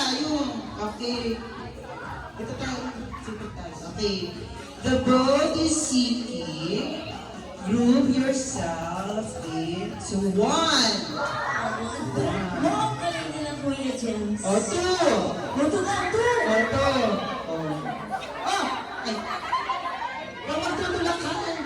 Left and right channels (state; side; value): identical; both; correlation 1.00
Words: Okay. Ito tayo. Sige tayo. Okay. The vote is seeking. Group yourself into one. Mo, galing nila Kuya James. O two. Buto ka, two. O two. O. Ah! Ay. Huwag magtutulakan.